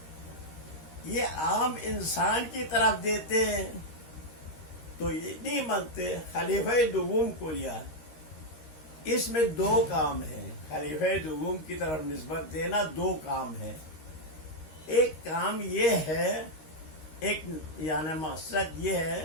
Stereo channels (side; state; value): right; late; 13 ms